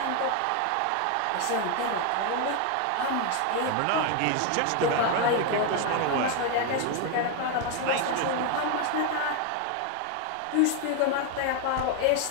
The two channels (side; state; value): both; different; correlation 0.01